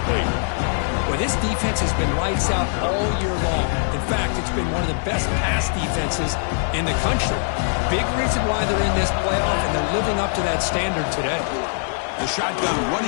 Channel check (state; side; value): silent; right; digital silence